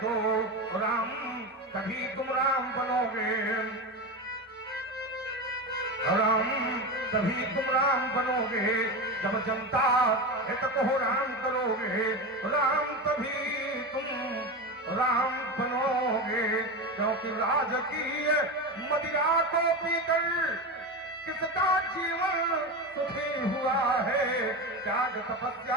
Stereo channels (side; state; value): both; normal; correlation 0.21